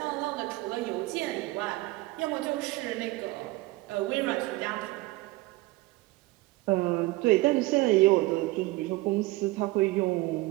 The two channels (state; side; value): quieter; left; 20.5 dB